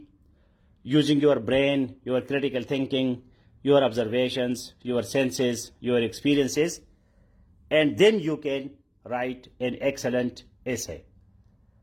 using your brain, your critical thinking, your observations, your senses, your experiences, and then you can write an excellent essay.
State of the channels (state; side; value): identical; both; correlation 1.00